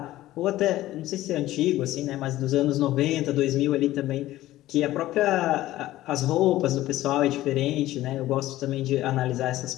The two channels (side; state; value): right; quieter; 15.5 dB